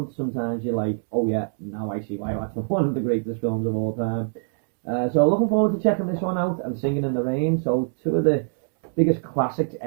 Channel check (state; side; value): silent; left; digital silence